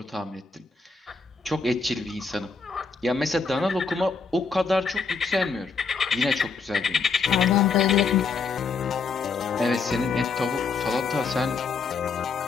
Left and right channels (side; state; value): right; quieter; 4.8 dB